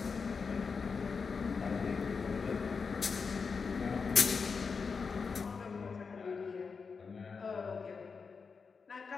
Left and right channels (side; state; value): right; quieter; 5.2 dB